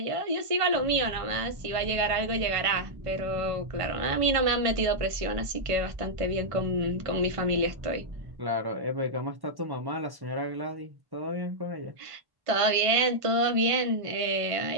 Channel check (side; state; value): left; late; 1.5 ms